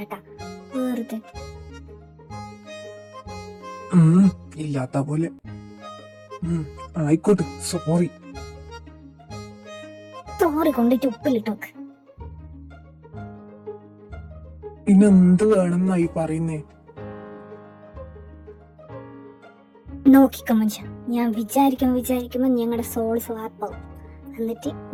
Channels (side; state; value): both; identical; correlation 1.00